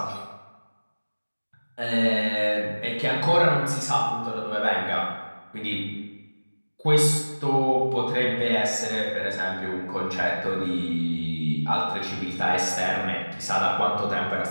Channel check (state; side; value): inverted; both; correlation -1.00